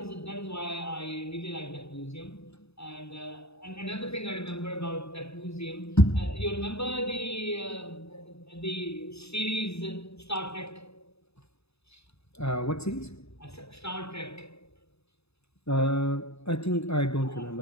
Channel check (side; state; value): right; late; 0.79 ms